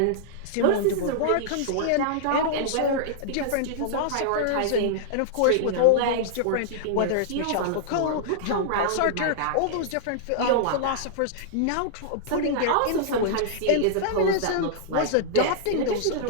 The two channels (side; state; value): both; different; correlation -0.01